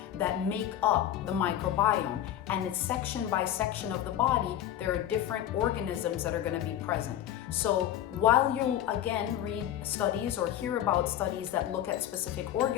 that make up the microbiome. And it's section by section of the body, there are different organisms that are going to be present. So while you again read studies or hear about studies that look at specific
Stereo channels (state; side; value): quieter; right; 11.5 dB